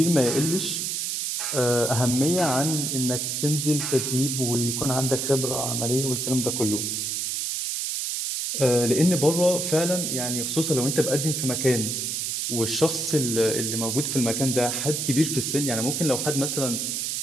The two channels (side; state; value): right; noise; hiss, 1 dB below the sound